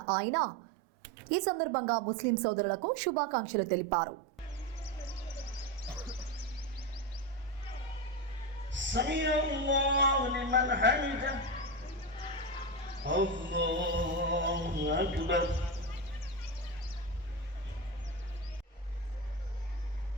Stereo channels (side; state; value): both; normal; correlation 0.16